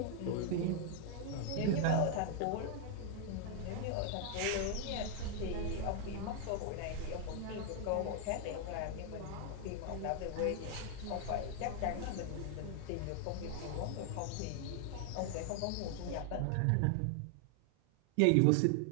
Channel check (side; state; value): both; different; correlation 0.00